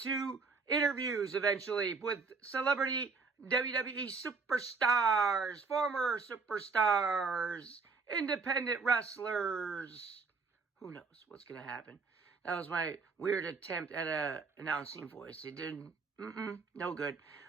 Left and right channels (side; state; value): left; quieter; 4.5 dB